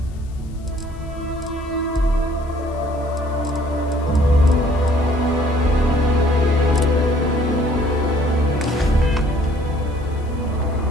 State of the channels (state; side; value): noise; left; hiss, 29 dB below the sound